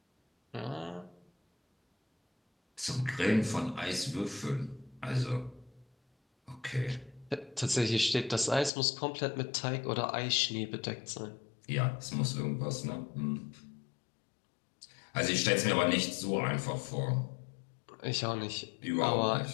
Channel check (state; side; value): drops out; right; at 8.7 s